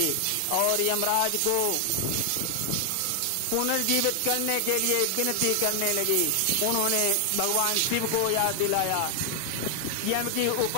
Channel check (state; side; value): different; both; correlation 0.00